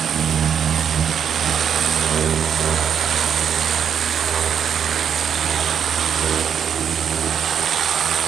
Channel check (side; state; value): left; quieter; 8.0 dB